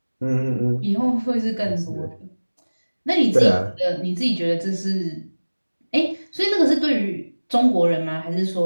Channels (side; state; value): both; inverted; correlation -1.00